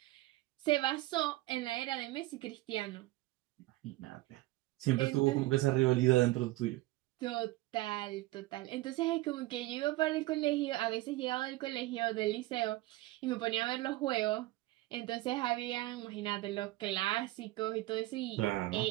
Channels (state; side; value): quieter; left; 18.6 dB